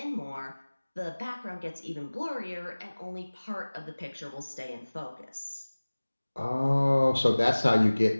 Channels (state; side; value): inverted; both; correlation -1.00